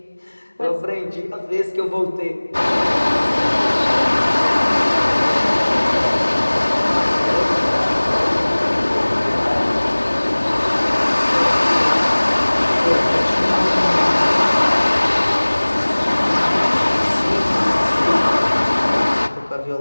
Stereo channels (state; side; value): inverted; both; correlation -1.00